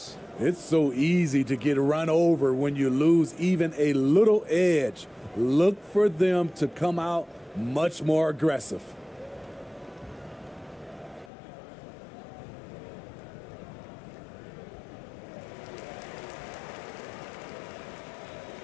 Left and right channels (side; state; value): right; drops out; at 11.3 s